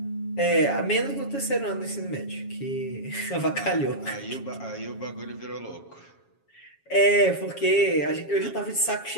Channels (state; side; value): late; right; 7.3 ms